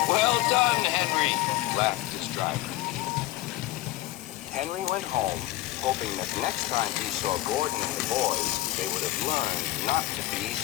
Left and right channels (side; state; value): right; quieter; 17.1 dB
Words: "Well done, Henry," laughed his driver. Henry went home, hoping that next time he saw Gordon and the boys, they would have learned not to be